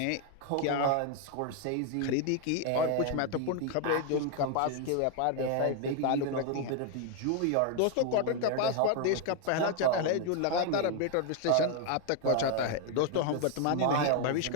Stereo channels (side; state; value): both; different; correlation 0.01